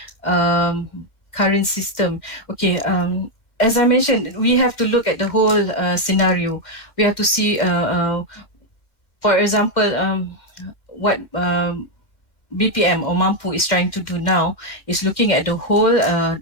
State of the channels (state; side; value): late; right; 2.1 ms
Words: current system? Okay. As I mentioned, we have to look at the whole scenario. We have to see, for example, what BPM or Mampu is trying to do now is looking at the whole